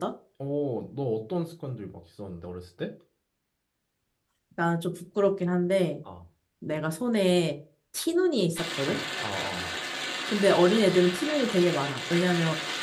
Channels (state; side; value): identical; both; correlation 1.00